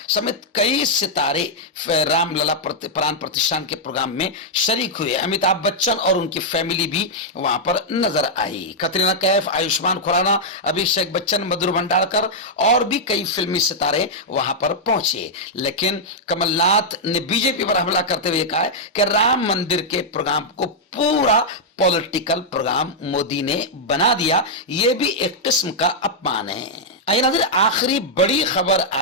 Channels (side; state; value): both; normal; correlation -0.05